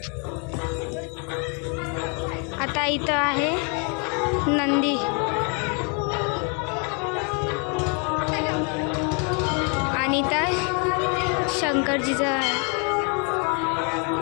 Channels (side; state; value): right; quieter; 36.7 dB